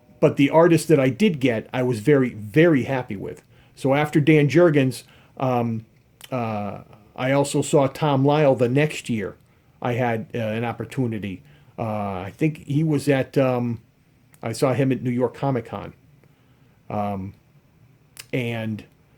but the artist that I did get, I was very, very happy with. So after Dan Jurgens, um, I also saw Tom Lyle the next year. I had an opportunity. I think he was at, I saw him at New York Comic Con. And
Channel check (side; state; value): both; identical; correlation 1.00